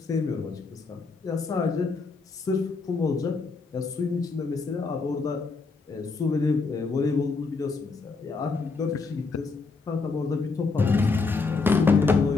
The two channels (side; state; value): right; quieter; 4.3 dB